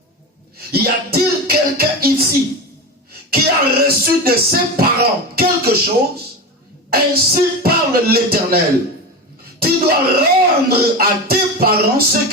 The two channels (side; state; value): both; normal; correlation 0.23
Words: Y a-t-il quelqu'un ici qui a reçu de ses parents quelque chose? Ainsi parle l'Éternel. Tu dois rendre à tes parents ce